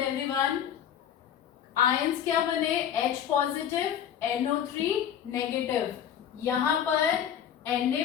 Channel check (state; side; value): quieter; right; 9.4 dB